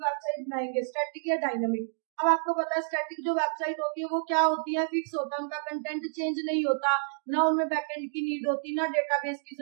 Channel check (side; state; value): left; silent; digital silence